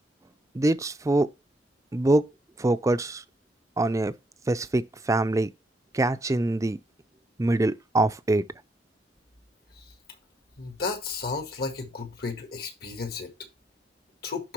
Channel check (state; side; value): normal; both; correlation 0.75